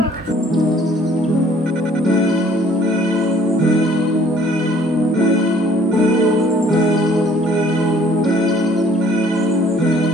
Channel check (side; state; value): both; normal; correlation 0.58